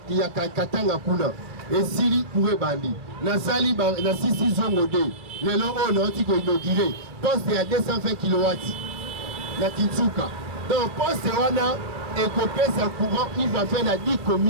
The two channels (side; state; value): left; late; 2.5 ms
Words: kuna esili kure bandi nasali na sisi zongo de lelo on a oti ko inaugurer poste ya 220 kW na Kinsuka donc poste wana ekopesa courant il va faire na 10